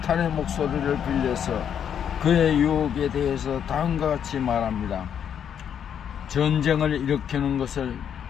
목소리를 빌려서 그의 유혹에 대해서 다음과 같이 말합니다. 전쟁을 일으키는 것은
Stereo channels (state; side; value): quieter; right; 8.6 dB